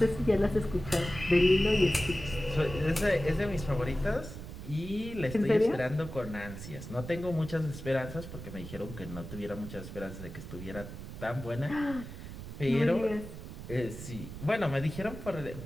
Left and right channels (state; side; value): noise; right; rumble, 11 dB below the sound